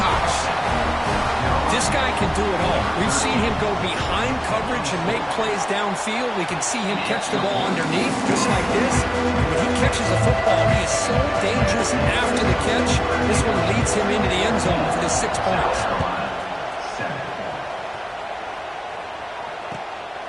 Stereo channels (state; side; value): identical; both; correlation 1.00